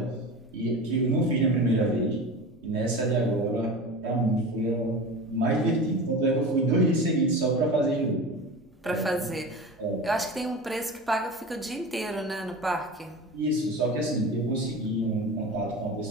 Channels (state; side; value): normal; both; correlation 0.30